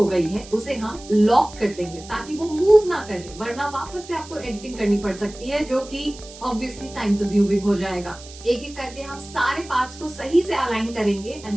गई है उसे हम लॉक कर देंगे ताकि वो मूव ना करे, वरना वापस से आपको एडिटिंग करनी पड़ सकती है जो कि ऑब्वियसली टाइम कंज्यूमिंग हो जाएगा। एक एक करके हम सारे पार्ट्स को सही से अलाइन करेंगे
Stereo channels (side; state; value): right; noise; hiss, 18 dB below the sound